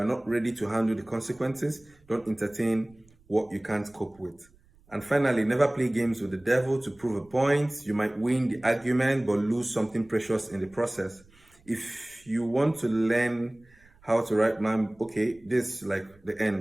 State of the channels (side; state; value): right; noise; rumble, 29 dB below the sound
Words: not ready to handle the consequences, don't entertain what you can't cope with. And finally, never play games with the devil to prove a point. You might win the argument, but lose something precious in the process. If you want to learn how to write, man, okay, this is like the